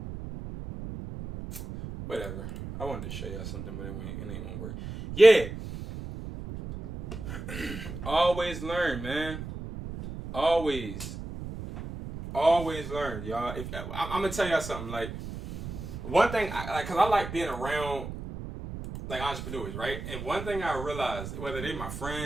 Whatever. I wanted to show y'all something, but it ain't gonna work. Yeah. Always learn, man. Always learn, y'all. I'm gonna tell y'all something. Like, one thing, cause I like being around like entrepreneurs, right? And one thing I realized, whether they're my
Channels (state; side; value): noise; right; rumble, 9 dB below the sound